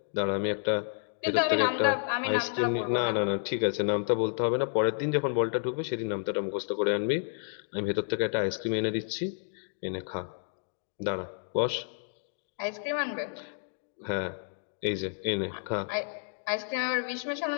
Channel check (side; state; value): right; silent; digital silence